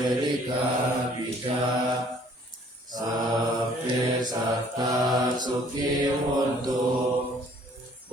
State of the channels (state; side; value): normal; both; correlation 0.58